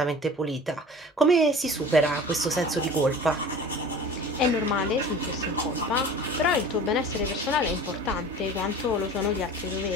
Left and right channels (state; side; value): normal; both; correlation 0.41